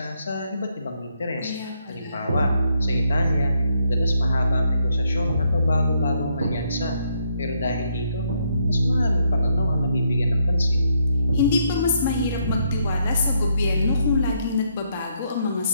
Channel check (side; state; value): both; inverted; correlation -0.75